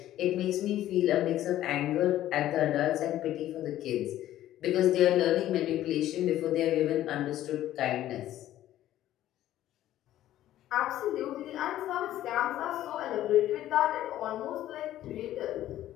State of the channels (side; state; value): right; quieter; 13.3 dB